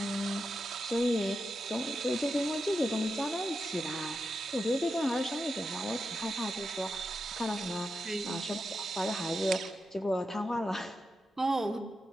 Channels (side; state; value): both; normal; correlation 0.88